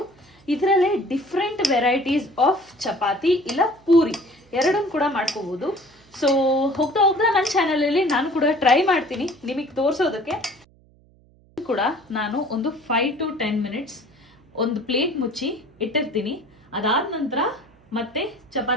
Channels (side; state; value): right; noise; hum, 30 dB below the sound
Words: ಇದರಲ್ಲೇ ಡಿಫ್ರೆಂಟ್ ವೆರೈಟೀಸ್ ಆಫ್ ಚಪಾತಿ ಇಲ್ಲ ಪೂರಿ ಎರಡನ್ನು ಕೂಡ ಮಾಡ್ಕೋಬಹುದು. ಸೊ ಹೋಗ್ತಾ ನನ್ನ ಚಾನಲಲ್ಲಿ ನಾನು ಕೂಡ ಟ್ರೈ ಮಾಡ್ತೀನಿ ನಿಮಗೆ ತೋರಿಸೋದಕ್ಕೆ. ಕೂಡ ನಾನು ಒಂದು 5 to 10 ಮಿನಿಟ್ಸ್ ಒಂದು ಪ್ಲೇಟ್ ಮುಚ್ಚಿ ಇಟ್ಟಿರ್ತೀನಿ. ಅದಾದ ನಂತರ ಮತ್ತೆ